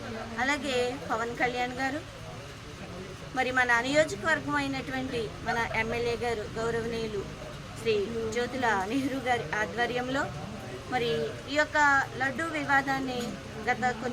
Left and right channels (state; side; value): identical; both; correlation 1.00